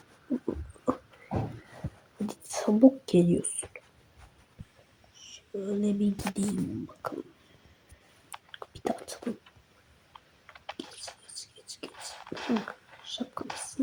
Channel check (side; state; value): both; identical; correlation 1.00